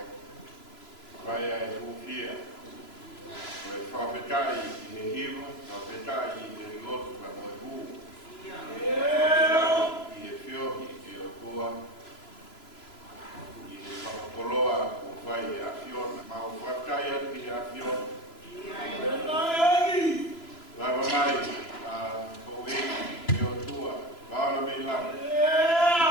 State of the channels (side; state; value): right; late; 3.0 ms